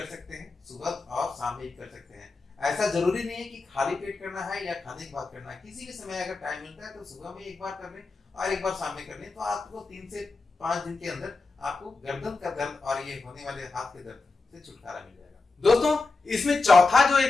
सकते हैं, सुबह और शाम में भी कर सकते हैं। ऐसा जरूरी नहीं है कि खाली पेट करना है या खाने के बाद करना है, किसी भी समय अगर टाइम मिलता है तो सुबह में एक बार कर लें और एक बार शाम में कर लें, तो आपको 3 से 5 दिन के अंदर आपको गर्दन का दर्द और ये होने वाले हाथ के दर्द से छुटकारा मिल जाएगा। दोस्तों इसमें चौथा जो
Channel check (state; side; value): quieter; right; 3.9 dB